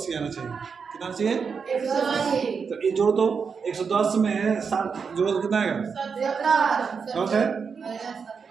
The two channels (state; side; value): quieter; left; 5.8 dB